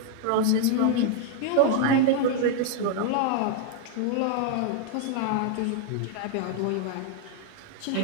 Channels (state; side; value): different; both; correlation 0.00